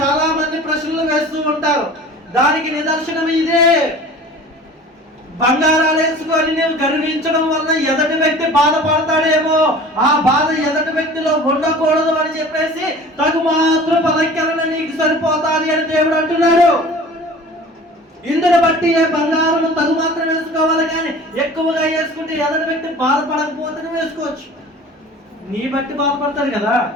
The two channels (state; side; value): normal; both; correlation 0.42